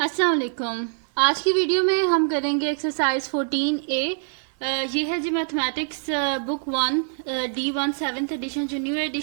वालेकुम। आज की वीडियो में हम करेंगे एक्सरसाइज 14A। ये है जी mathematics book 1 D1 7th edition जो न्यू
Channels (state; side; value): silent; left; 59 dB below the other